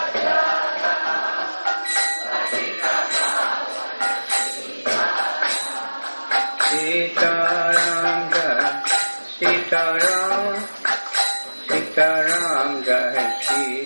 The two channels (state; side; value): inverted; both; correlation -1.00